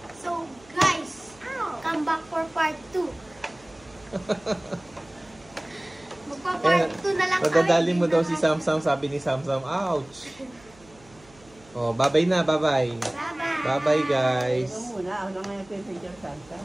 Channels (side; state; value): right; noise; hum, 26 dB below the sound